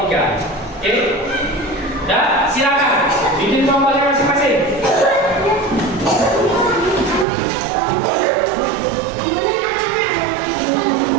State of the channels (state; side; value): drops out; left; at 7.2 s